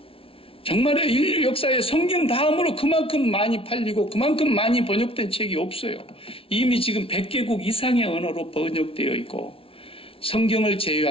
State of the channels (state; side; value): late; right; 0.26 ms